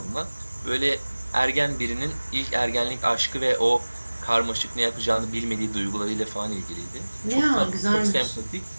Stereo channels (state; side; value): inverted; both; correlation -1.00